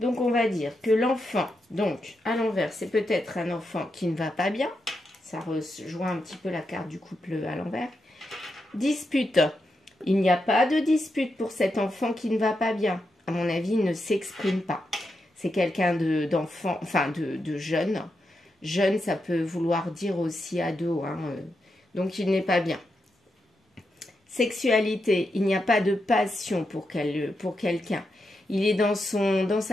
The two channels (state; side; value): normal; both; correlation 0.85